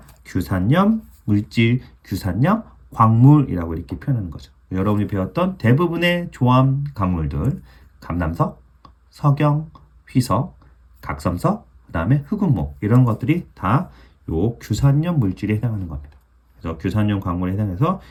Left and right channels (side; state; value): both; identical; correlation 1.00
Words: 규산염 물질, 규산염 광물이라고 이렇게 표현하는 거죠. 여러분이 배웠던 대부분의 조합 강물들 감남석, 석영, 휘석, 각섬석, 그 다음에 흑운모 이런 것들이 다 요 규산염 물질에 해당하는 겁니다. 그래서 규산염 광물에 해당해서